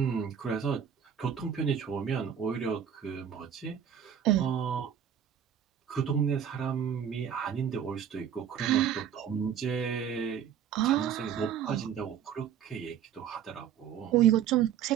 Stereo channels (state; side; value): quieter; left; 8.8 dB